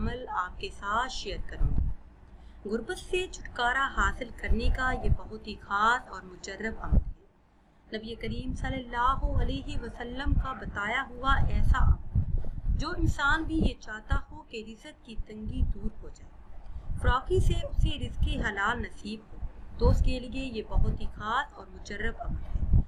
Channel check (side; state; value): both; identical; correlation 1.00